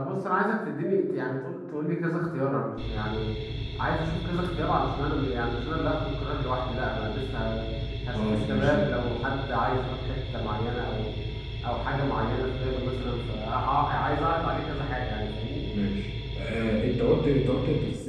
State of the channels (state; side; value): identical; both; correlation 1.00